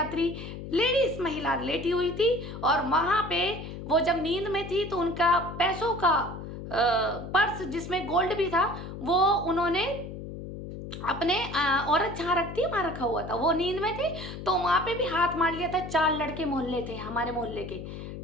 लेडीज महिला लेटी हुई थी, और वहां पे वो जब नींद में थी तो उनका पैसों का पर्स जिसमें गोल्ड भी था, वो उन्होंने अपने औरत जहाँ रखती है वहाँ रखा हुआ था, वो नींद में थी, तो वहां पे भी हाथ मार लिया था। 4 लड़के मोहल्ले थे हमारे मोहल्ले के।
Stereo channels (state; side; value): noise; left; hum, 9 dB below the sound